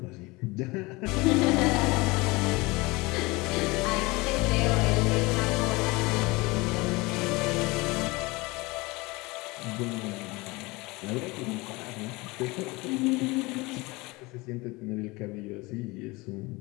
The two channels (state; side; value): quieter; right; 23.6 dB